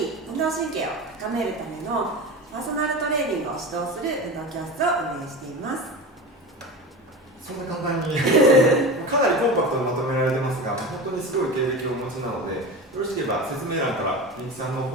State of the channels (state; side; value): normal; both; correlation 0.28